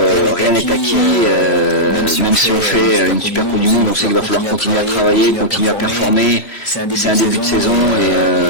rien n'est acquis, même si on fait une super Coupe du Monde, on sait qu'il va falloir continuer à travailler, continuer à performer. C'est un début de saison,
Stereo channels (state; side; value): late; right; 3.0 ms